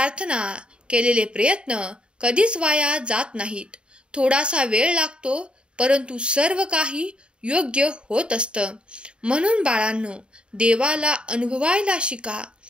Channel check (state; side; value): late; left; 0.053 ms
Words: केलेले प्रयत्न कधीच वाया जात नाहीत. थोडासा वेळ लागतो, परंतु सर्व काही योग्य होत असतं. म्हणून बाळांनो, देवाला अनुभवायला शिका.